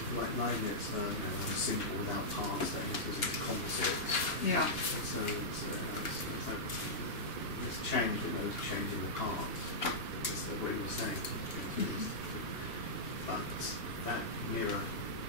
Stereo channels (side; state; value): right; late; 2.8 ms